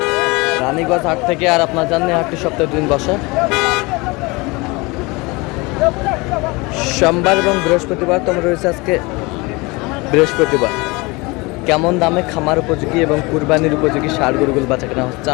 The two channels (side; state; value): right; quieter; 25.1 dB